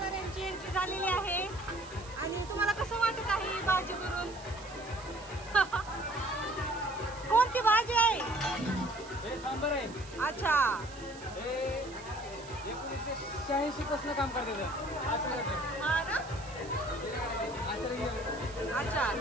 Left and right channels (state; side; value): noise; right; hiss, 18 dB below the sound